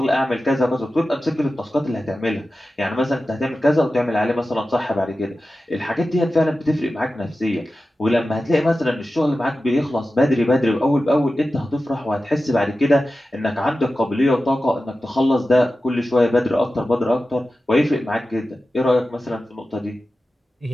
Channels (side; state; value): both; normal; correlation 0.94